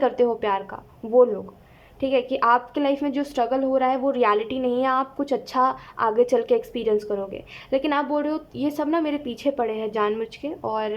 हो प्यार का, वो लोग, ठीक है। कि आपके लाइफ में जो स्ट्रगल हो रहा है वो रियलिटी नहीं है, आप कुछ अच्छा आगे चल के एक्सपीरियंस करोगे। लेकिन आप बोल रहे हो ये सब ना मेरे पीछे पड़े हैं जानबूझ के,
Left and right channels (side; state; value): both; identical; correlation 1.00